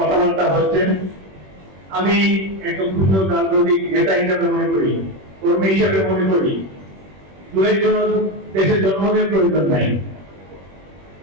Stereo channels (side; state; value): left; late; 21 ms